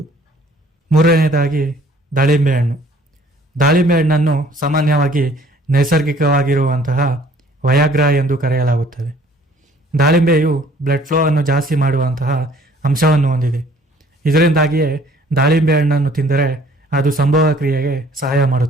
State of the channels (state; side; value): normal; both; correlation 0.57